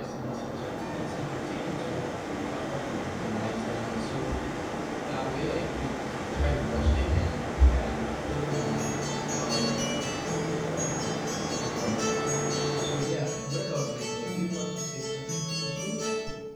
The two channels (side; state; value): both; identical; correlation 1.00